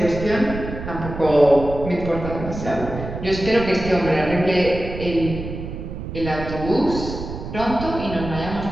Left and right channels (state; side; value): noise; right; rumble, 8 dB below the sound